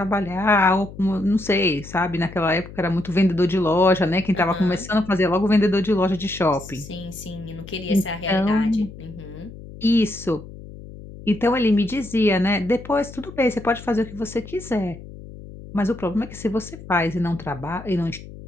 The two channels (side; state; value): left; noise; hum, 15 dB below the sound